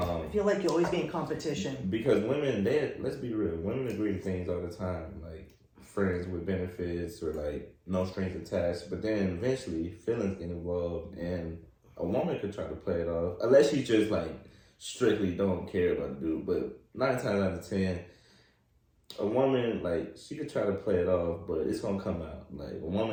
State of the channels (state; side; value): identical; both; correlation 1.00